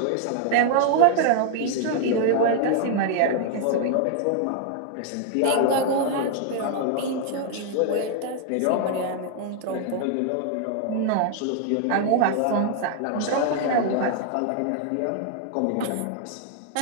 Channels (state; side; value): different; both; correlation 0.00